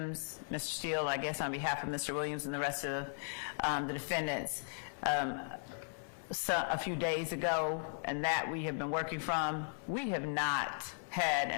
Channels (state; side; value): silent; right; 53 dB below the other